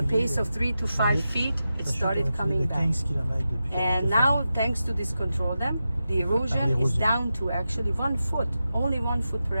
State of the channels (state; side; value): inverted; both; correlation -0.91